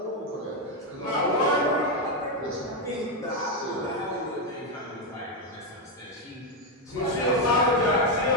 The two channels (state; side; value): normal; both; correlation 0.05